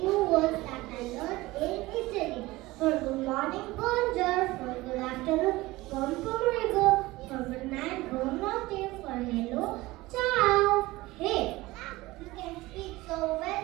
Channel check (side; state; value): left; quieter; 19.7 dB